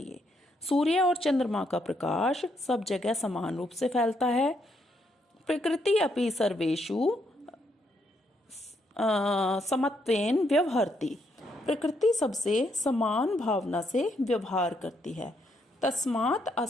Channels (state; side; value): normal; both; correlation 0.75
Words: सूर्य और चंद्रमा का प्रकाश सब जगह समान रूप से फैलता है। प्रकृति अपि सर्वेषु समत्वेन व्यवहरति, प्रकृति सबसे समान भावना से व्यवहार करती है। तस्मात्